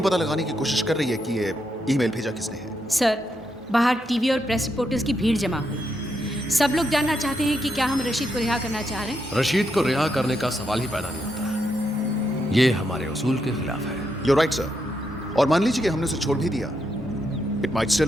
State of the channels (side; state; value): both; normal; correlation 0.81